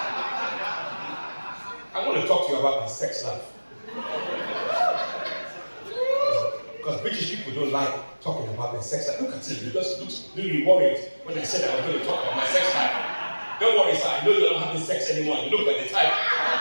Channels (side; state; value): both; inverted; correlation -1.00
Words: I want to talk to you about my sex life. Because British people don't like talking about their sex life. Look at him, he just looks really worried when I said I was going to talk about my sex life. Don't worry, sir, I know you're not having sex anymore. You look like the type.